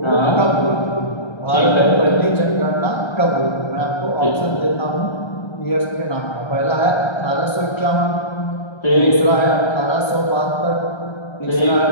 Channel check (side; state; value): right; late; 1.3 ms